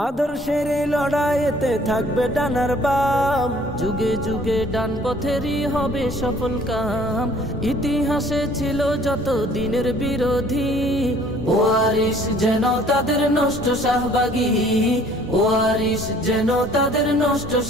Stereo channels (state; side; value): normal; both; correlation 0.56